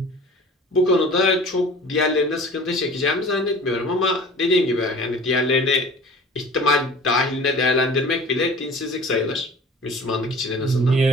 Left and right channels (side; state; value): both; normal; correlation 0.43